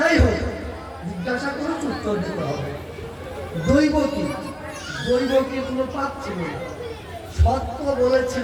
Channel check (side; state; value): both; identical; correlation 1.00